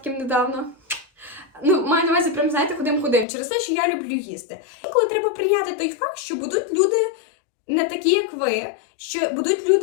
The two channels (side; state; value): right; drops out; at 3.2 s